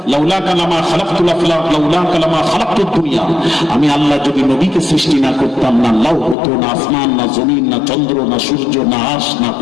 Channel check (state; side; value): drops out; right; at 6.4 s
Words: লাউলা কালামা খালাকতুল আফলাক লাউলা কালামা খালাকতুদ দুনিয়া, আমি আল্লাহ যদি নবীকে সৃষ্টি না করতাম, না লাউ হতো, না আসমান, না জমিন, না চন্দ্র, না সূর্য, না আরশ, না